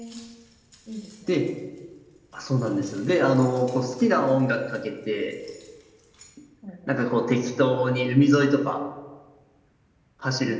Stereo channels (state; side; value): identical; both; correlation 1.00